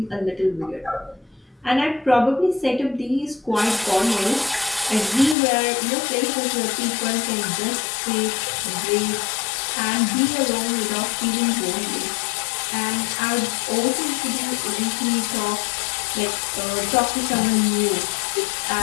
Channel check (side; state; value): right; drops out; at 5.4 s